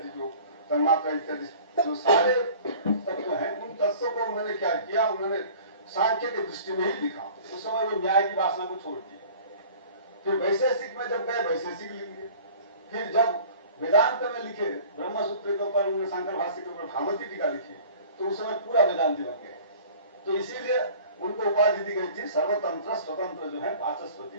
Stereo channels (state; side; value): inverted; both; correlation -0.46